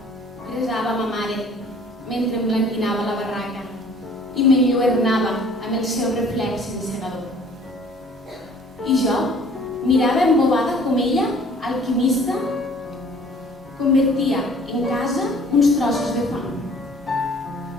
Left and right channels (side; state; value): both; normal; correlation 0.53